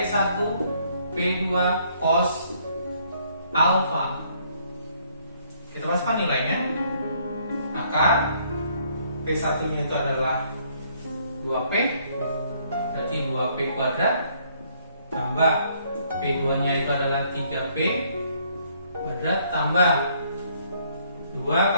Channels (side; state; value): both; inverted; correlation -0.66